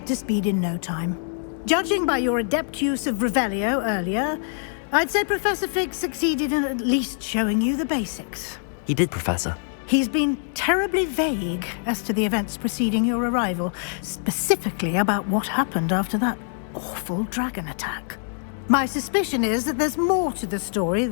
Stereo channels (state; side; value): silent; right; digital silence